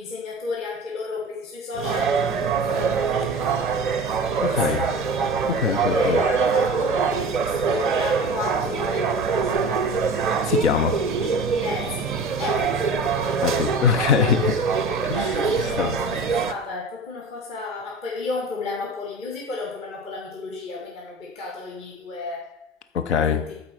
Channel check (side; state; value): both; normal; correlation 0.34